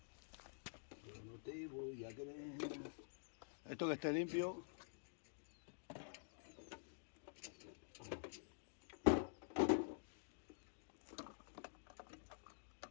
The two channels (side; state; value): right; silent; digital silence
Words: Yo no te voy a querer. Esto que esté limpio.